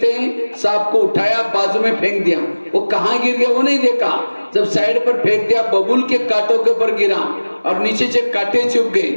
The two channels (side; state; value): both; inverted; correlation -1.00